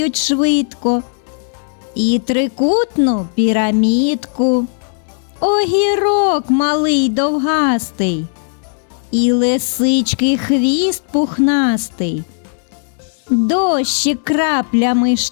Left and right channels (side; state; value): right; silent; digital silence